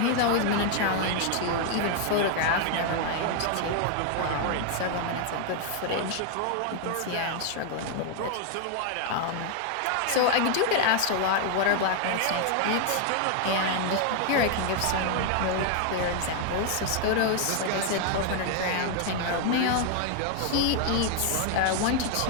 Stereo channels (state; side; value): different; both; correlation 0.00